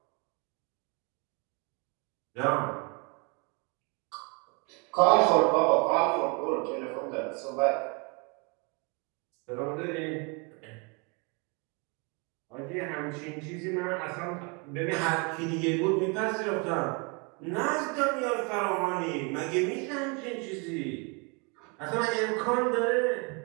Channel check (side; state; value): left; quieter; 32.3 dB